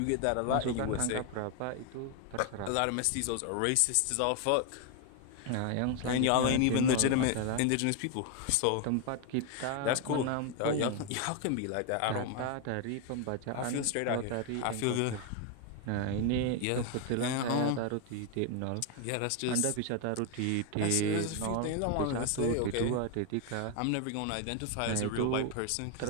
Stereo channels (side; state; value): both; different; correlation 0.01